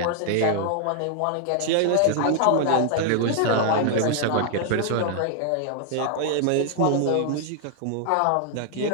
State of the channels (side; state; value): both; different; correlation 0.00